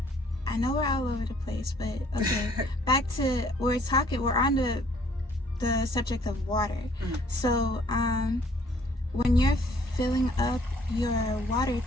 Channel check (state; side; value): normal; both; correlation 0.60